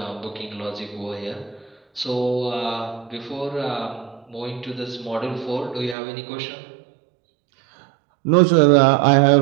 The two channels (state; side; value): drops out; left; at 6.0 s